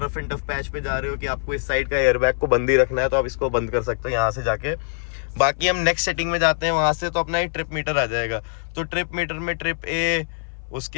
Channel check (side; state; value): right; silent; 58 dB below the other